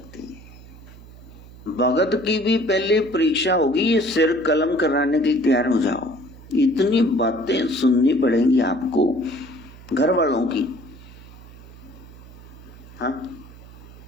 है। भगत की भी पहले परीक्षा होगी, ये सिर कलम कराने के लिए तैयार हो जाओ। इतनी बातें सुननी पड़ेंगी आपको घर वालों की। हाँ,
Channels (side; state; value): right; noise; hum, 19 dB below the sound